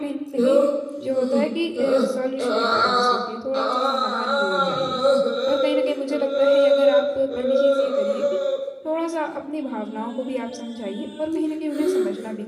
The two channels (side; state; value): both; identical; correlation 1.00